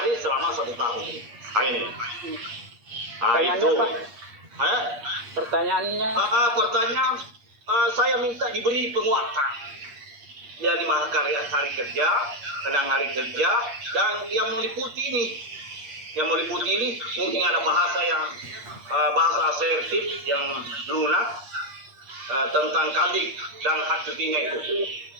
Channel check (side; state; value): left; late; 8.5 ms